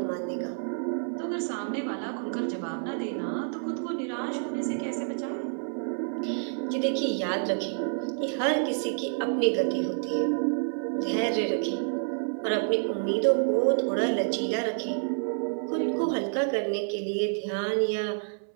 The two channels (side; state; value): left; silent; 59 dB below the other